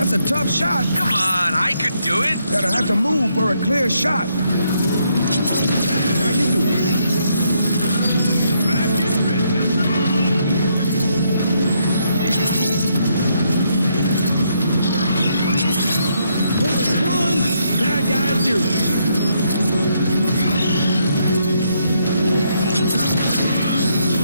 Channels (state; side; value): inverted; both; correlation -0.75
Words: a tough shot. Come on, I could do it. Gotta have to move for a clear shot. How you doing? Back in business. Bullet one, bad guy zero.